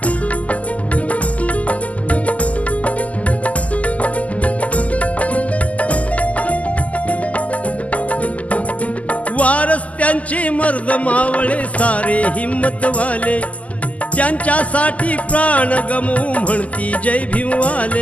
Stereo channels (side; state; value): right; late; 0.071 ms